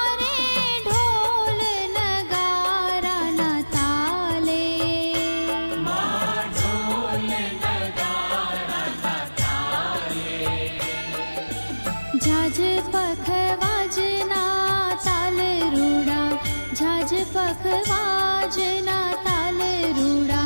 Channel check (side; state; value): both; inverted; correlation -1.00